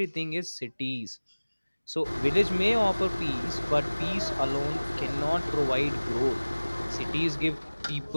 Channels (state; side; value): inverted; both; correlation -1.00